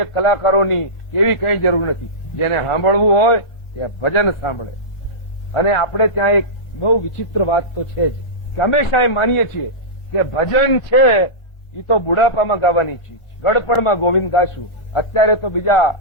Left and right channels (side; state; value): right; late; 1.6 ms